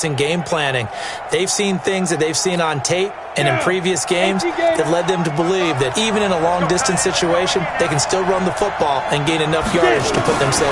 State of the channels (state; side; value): identical; both; correlation 1.00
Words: and game planning. They've seen things that they've seen on tape and in previous games that led them to believe that even in a long-distance situation, they can still run the football and gain enough yardage to put